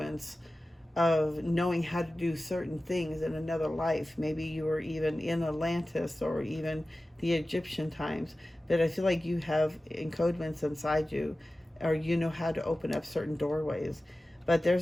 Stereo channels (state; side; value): normal; both; correlation 0.95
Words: of knowing how to do certain things in another life. Maybe you were even in Atlantis or even the Egyptian times. But I feel like you have encodements inside you, or you know how to open up certain doorways. But